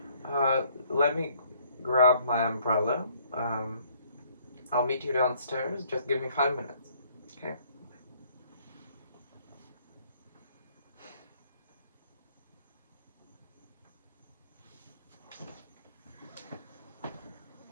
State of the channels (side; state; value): both; inverted; correlation -0.63